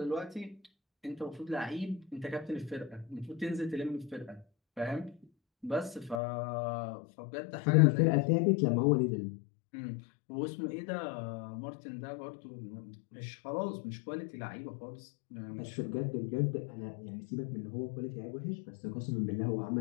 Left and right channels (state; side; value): drops out; right; at 6.2 s